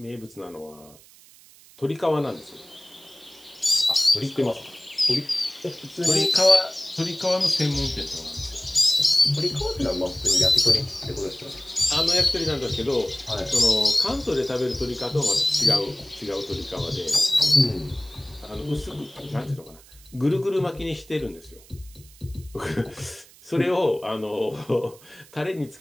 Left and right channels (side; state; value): right; noise; hiss, 24 dB below the sound